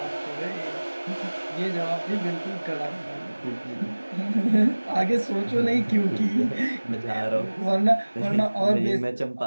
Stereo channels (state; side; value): inverted; both; correlation -1.00